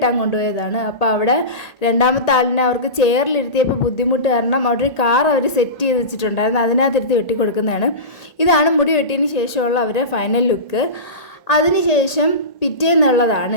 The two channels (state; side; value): late; right; 1.8 ms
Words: കൊണ്ടുപോയതാണ്. അപ്പോൾ അവിടെ രണ്ടാമത്തെ ആളിനെ അവർക്ക് ചെയറിലിരുത്തിയപ്പോൾ ബുദ്ധിമുട്ട് കാരണം അവിടെ ഒരു കാർ അവർ സെറ്റ് ചെയ്ത് വെച്ചിട്ടുണ്ടായിരുന്നു. അതിനകത്തിരുത്തി വെട്ടിക്കൊടുക്കുന്നതാണ്. ഇതാണ് മുടി വെട്ടിയതിന് ശേഷമുള്ള അവരുടെ ഫൈനൽ ലുക്ക്. അതിനുശേഷം